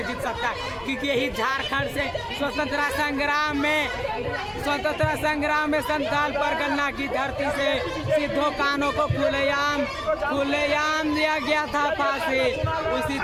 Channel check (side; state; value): both; identical; correlation 1.00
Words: जीत सकता है। क्योंकि यही झारखंड से स्वतंत्रता संग्राम में संथाल परगना की धरती से सिद्धो कानों को खुलेआम दिया गया था फांसी। उसी